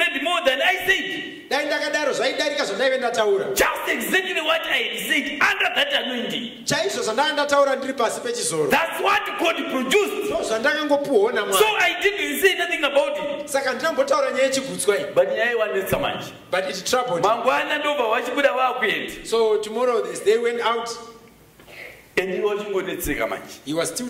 more than I said. Dai ndakadaro zvaidarika zvandaive ndataura. Just exactly what I had said under that anointing. Chaizvo zvandanga ndataura ndiri pasi pechizoro. That's what God produced. So zvandakangopuwa naMwari. So I didn't say nothing about it. Saka ndinambotaura nyaya yechigutswa iyi. But nyaya iwanetsa manje. But it troubled. Mangwana ndobva vachibuda vakuenda. So tomorrow they went out. And he was chingonetseka manje. He was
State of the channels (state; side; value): identical; both; correlation 1.00